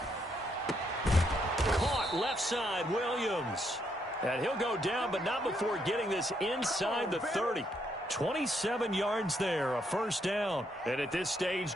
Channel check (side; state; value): both; normal; correlation 0.75